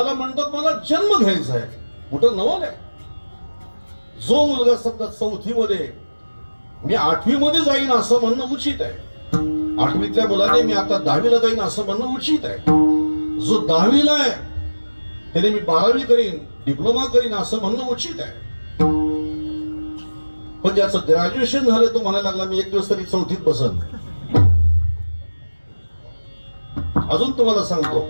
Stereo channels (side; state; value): both; inverted; correlation -1.00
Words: म्हणतात मला जन्म घ्यायचा आहे, मोठं नवल आहे. जो मुलगा समजा 4थी मध्ये मी 8वी मध्ये जाईन असं म्हणणं उचित आहे. 8वीतल्या मुलाने मी आता 10वीला जाईन असं म्हणणं उचित आहे. जो 10वीला आहे त्याने मी 12वी करीन, डिप्लोमा करीन असं म्हणणं उचित आहे. पण ज्याचं ग्रॅज्युएशन झालं तो म्हणायला लागला मी एक दिवस तरी 4थीत बसन. अजून तुम्हाला सांगतो,